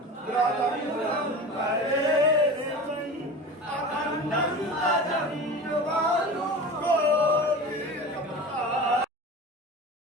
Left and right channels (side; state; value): both; normal; correlation 0.33